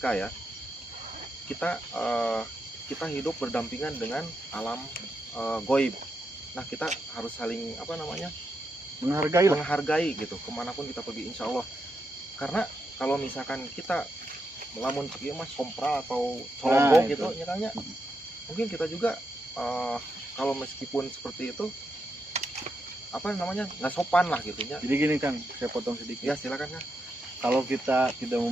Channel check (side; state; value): both; normal; correlation 0.84